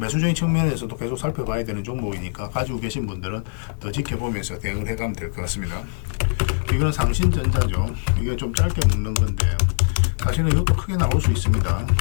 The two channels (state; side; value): silent; right; digital silence